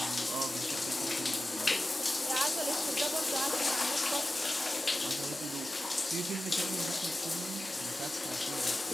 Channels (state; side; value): normal; both; correlation 0.95